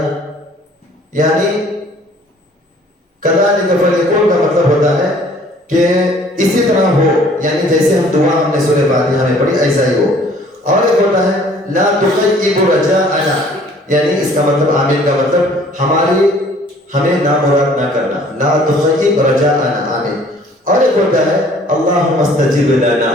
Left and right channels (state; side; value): normal; both; correlation 0.55